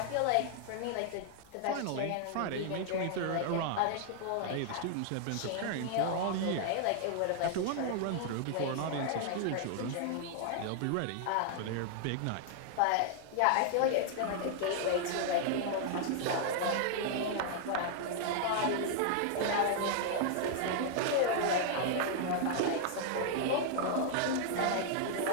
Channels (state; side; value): different; both; correlation -0.01